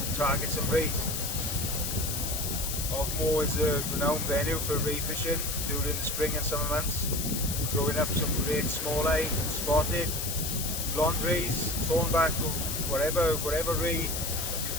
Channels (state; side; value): noise; left; hiss, 3 dB below the sound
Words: target some rays. Ogmore is a renowned venue for ray fishing during the spring and summer months, throwing up some great smalleye, spotted, blonde rays, thornback, whatever ray you